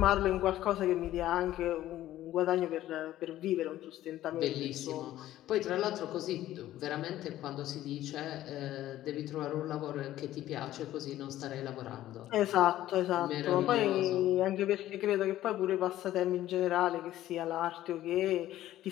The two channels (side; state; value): right; quieter; 13.9 dB